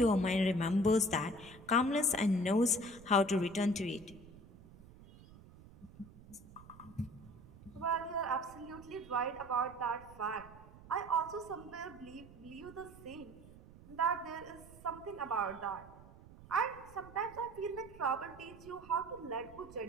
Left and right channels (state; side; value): noise; right; rumble, 20 dB below the sound